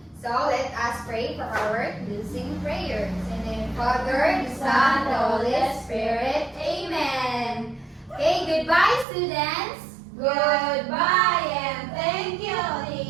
So let us pray for our closing prayers. In the name of the Father, the Son, the Holy Spirit. Amen. Okay, goodbye students. Goodbye and thank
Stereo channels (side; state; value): left; drops out; at 9.1 s